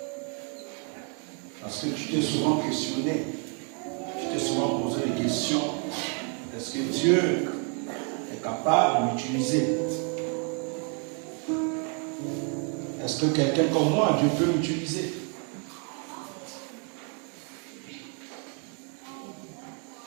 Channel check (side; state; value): left; quieter; 40.0 dB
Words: Parce que tu t'es souvent questionné, tu t'es souvent posé des questions. Est-ce que Dieu est capable de m'utiliser? Est-ce que quelqu'un comme moi, Dieu peut m'utiliser?